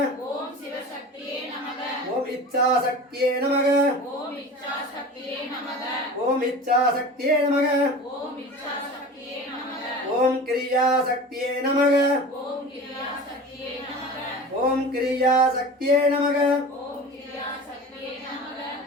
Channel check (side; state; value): both; normal; correlation 0.36